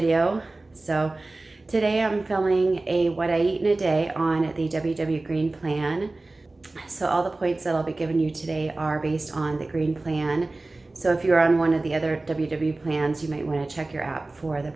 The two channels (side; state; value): left; quieter; 3.1 dB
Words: So today I'm filming a what I eat in a day on the WW Green Plan. So all the points that I'll be giving you today are based on the Green Plan. So if you're on one of the other WW plans, you might want to check your app for the